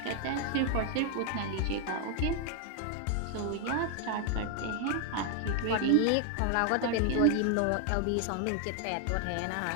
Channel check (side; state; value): both; different; correlation 0.00